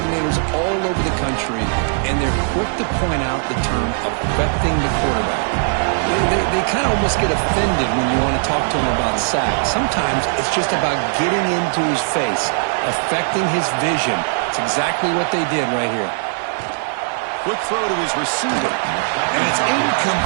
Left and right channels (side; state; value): left; silent; digital silence